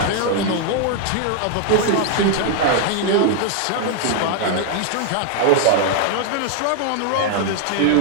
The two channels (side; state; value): both; different; correlation 0.00